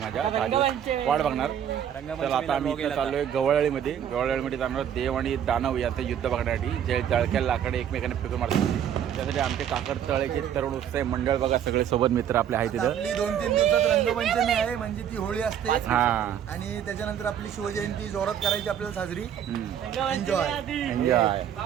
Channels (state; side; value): quieter; left; 9.4 dB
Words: 10 दिवस वाट बघणार. तर आता आम्ही इथे चाललोय गवळाळीमध्ये. गवळाळीमध्ये जाणार देव आणि दानव यांचं युद्ध बघण्यासाठी. जे जळक्या लाकडे एकमेकांना फेकून मारतात त्यासाठी आमचे काकर तळेचे तरुण उत्साही मंडळ बघा, सगळे सोबत मित्र आपले आहेत तिथं. 2-3 दिवसात रंगपंचमी आहे, म्हणजे ती होळी असते. हा, आणि त्याच्यानंतर आपली शिवजयंती जोरात करायची आपल्याला साजरी. एन्जॉय.